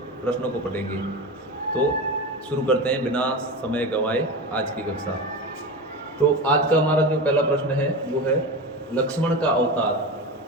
को पढ़ेंगे। तो शुरू करते हैं बिना समय गंवाए आज की कक्षा। तो आज का हमारा जो पहला प्रश्न है वो है, लक्ष्मण का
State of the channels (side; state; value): both; normal; correlation 0.24